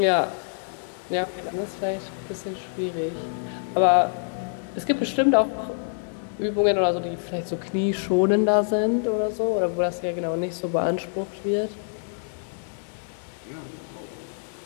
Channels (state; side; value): silent; right; digital silence